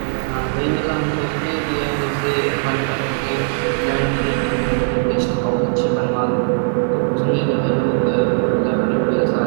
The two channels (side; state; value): left; silent; 67 dB below the other